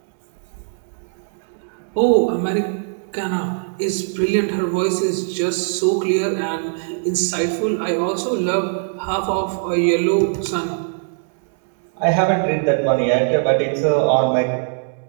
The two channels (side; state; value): left; silent; digital silence